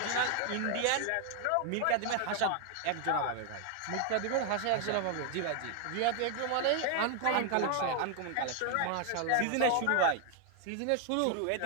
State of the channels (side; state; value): both; different; correlation 0.00